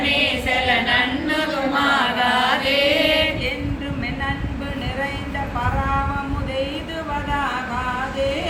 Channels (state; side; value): identical; both; correlation 1.00